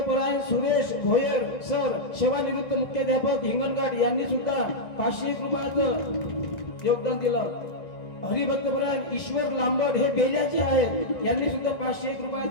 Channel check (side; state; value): right; late; 1.6 ms